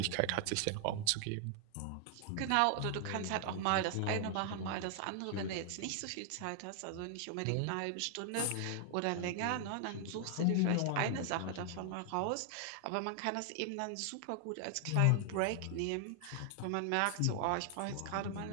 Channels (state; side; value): different; both; correlation 0.00